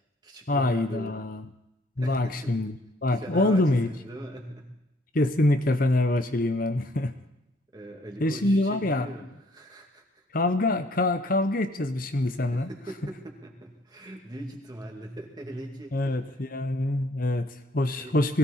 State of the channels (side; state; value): both; normal; correlation 0.62